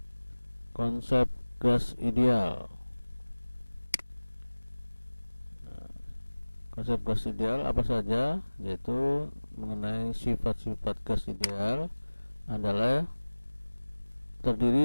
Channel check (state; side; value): inverted; both; correlation -1.00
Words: Konsep gas ideal. Konsep gas ideal apa saja? Yaitu mengenai sifat-sifat gas ideal adalah